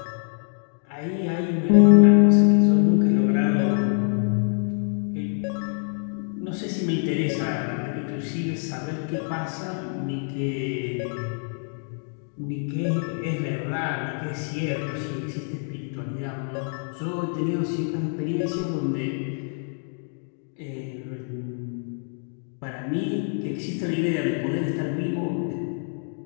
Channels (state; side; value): silent; right; 56 dB below the other